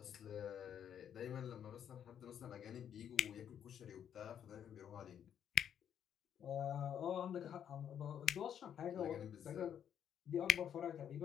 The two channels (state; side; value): quieter; right; 9.1 dB